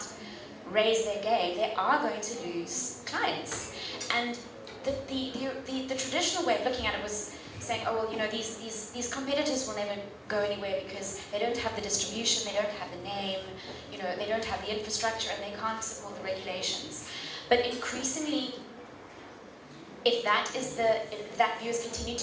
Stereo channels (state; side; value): identical; both; correlation 1.00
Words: raise their game, they are going to lose clients. And the traditional way of looking at it was saying, oh well, these competitors will never go anywhere because they don't have the distribution, they don't have the name, they don't have the infrastructure, and they can't support the regulations. But increasingly, if that view is continued